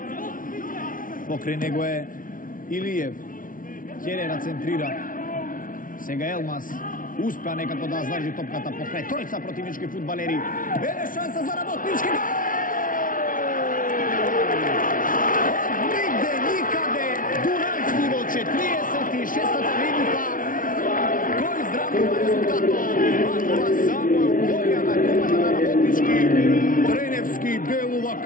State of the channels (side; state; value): right; late; 0.39 ms